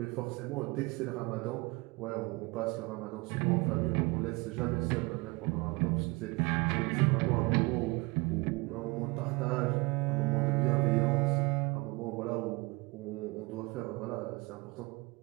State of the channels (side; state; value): left; quieter; 25.1 dB